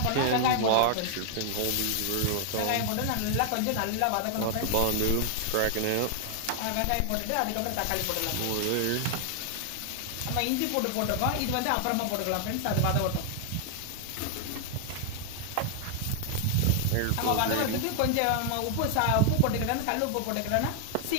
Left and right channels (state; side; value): different; both; correlation 0.00